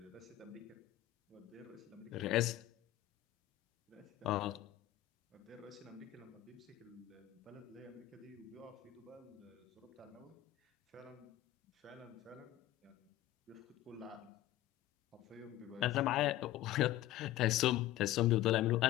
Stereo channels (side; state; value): right; quieter; 14.4 dB